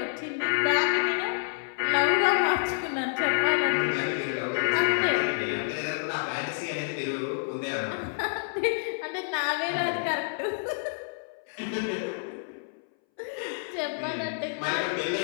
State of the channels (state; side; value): silent; right; 59 dB below the other